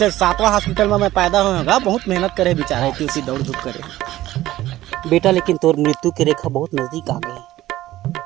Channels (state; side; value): quieter; left; 15.3 dB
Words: 7वां हॉस्पिटल में मैं पैदा होगा बहुत मेहनत करे बेचारा इतनी होती दौड़ धूप करे बेटा। लेकिन तोर मृत्यु की रेखा बहुत नजदीक आ गई